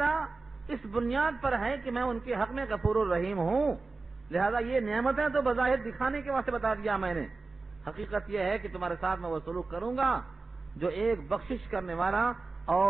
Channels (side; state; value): left; quieter; 3.8 dB